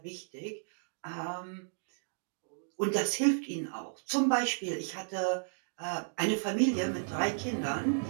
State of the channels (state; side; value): silent; left; digital silence